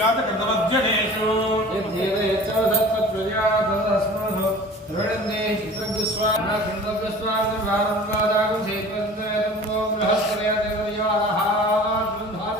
यद्येवेच्छवसत्त्वजातस्मृधो द्रविणन्दे चित्रगुस्वाहा खण्डगुस्वाहारं सेत्वन्दो बृहस्पते देवयाः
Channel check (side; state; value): both; normal; correlation 0.43